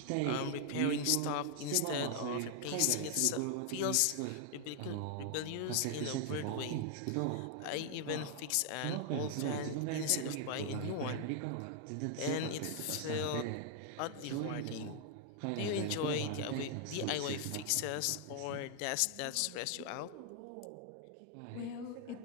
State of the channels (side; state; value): both; different; correlation 0.00